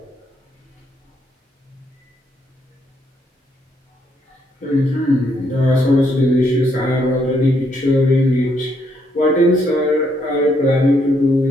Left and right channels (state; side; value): normal; both; correlation 0.73